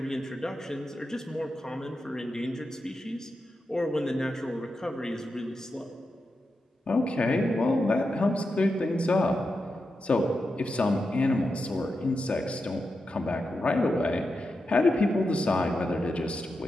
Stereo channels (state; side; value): normal; both; correlation 0.88